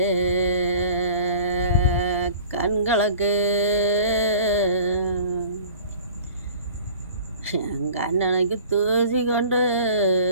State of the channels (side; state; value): both; inverted; correlation -0.45